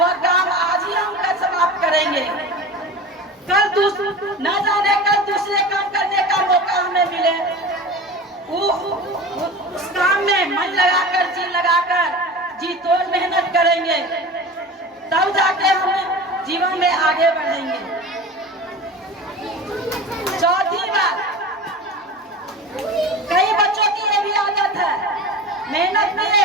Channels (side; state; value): both; normal; correlation 0.34